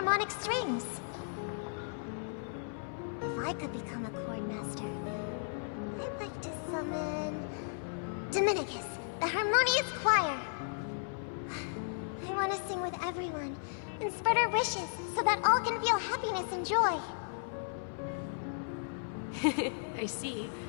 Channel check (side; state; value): right; silent; 54 dB below the other